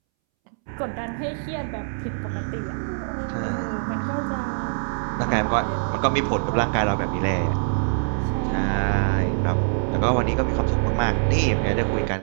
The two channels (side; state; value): left; silent; 63 dB below the other